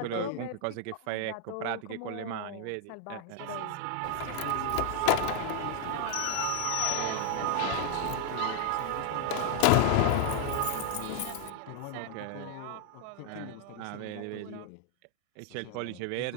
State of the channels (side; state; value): both; different; correlation 0.00